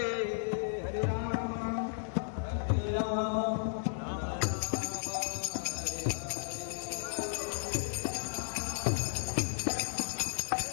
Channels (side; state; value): right; silent; digital silence